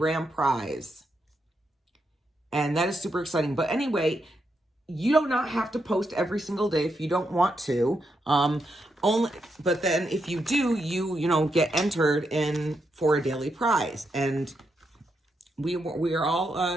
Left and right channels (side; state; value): both; normal; correlation 0.82